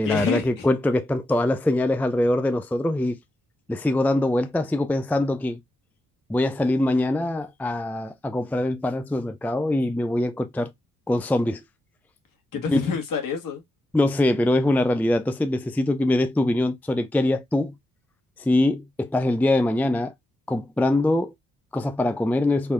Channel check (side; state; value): both; normal; correlation 0.89